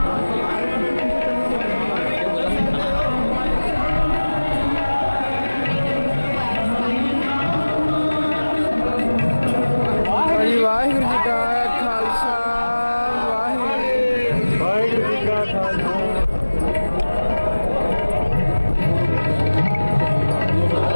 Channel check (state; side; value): inverted; both; correlation -1.00